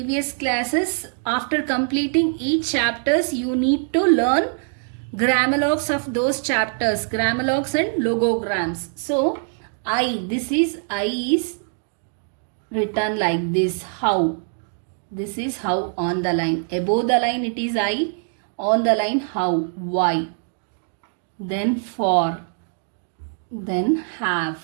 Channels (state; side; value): silent; left; 58 dB below the other